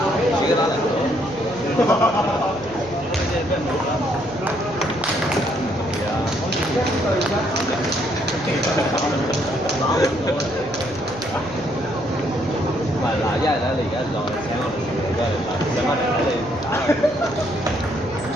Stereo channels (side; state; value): right; noise; hum, 19 dB below the sound